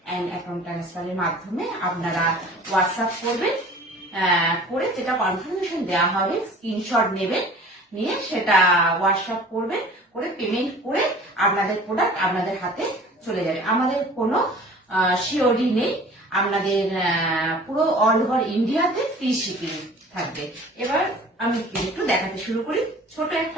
অ্যান্ড অ্যাকাউন্ট ট্রান্সফারের মাধ্যমে আপনারা হোয়াটসঅ্যাপ করবেন, করে যেটা কনফার্মেশন দেওয়া হবে স্ক্রিনশট নেবেন, নিয়ে সেটা হোয়াটসঅ্যাপ করবেন, করে পেমেন্ট করে আপনাদের প্রোডাক্ট আপনাদের হাতে চলে যাবে। আমাদের কোনো সিওডি নেই, আপনাদের পুরো অল ওভার ইন্ডিয়াতে ফ্রি শিপিং থাকবে। এবার আমি একটু দেখাতে শুরু করি। ছোট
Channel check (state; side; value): normal; both; correlation 0.46